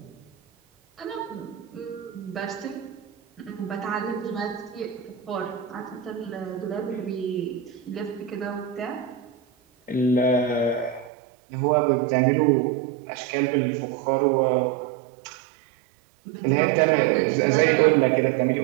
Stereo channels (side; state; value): left; drops out; at 11.1 s